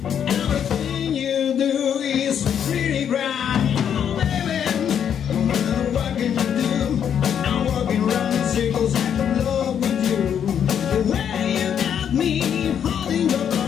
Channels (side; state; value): right; quieter; 8.6 dB